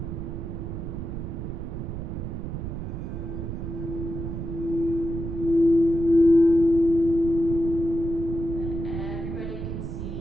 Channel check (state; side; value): noise; right; rumble, 5 dB below the sound